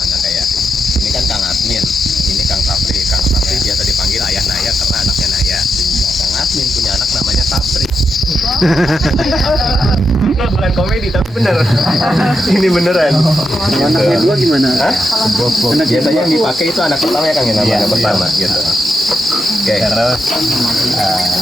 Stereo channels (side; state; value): both; normal; correlation 0.84